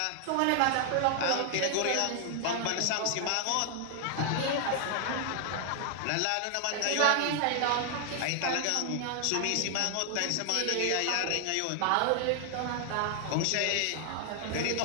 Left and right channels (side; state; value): both; different; correlation 0.00